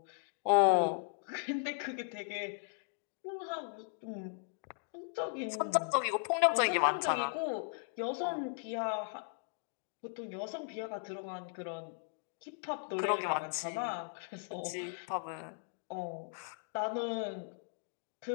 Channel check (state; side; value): silent; right; digital silence